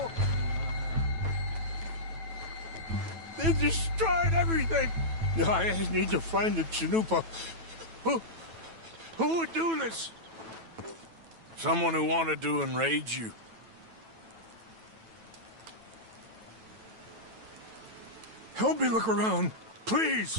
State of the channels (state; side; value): late; left; 9.1 ms